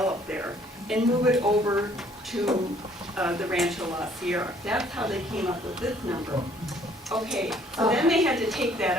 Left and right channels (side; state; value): both; normal; correlation 0.60